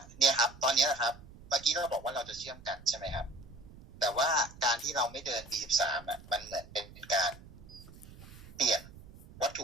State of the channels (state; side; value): noise; right; rumble, 19 dB below the sound